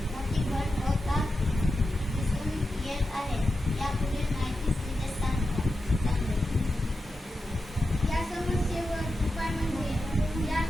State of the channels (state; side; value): normal; both; correlation 0.90